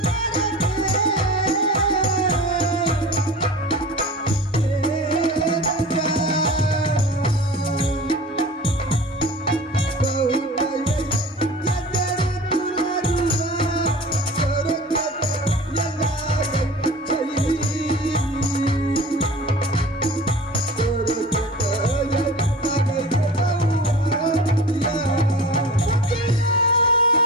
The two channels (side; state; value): both; normal; correlation 0.38